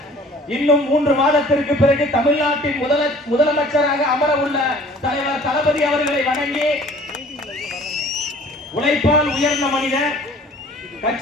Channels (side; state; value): both; normal; correlation 0.50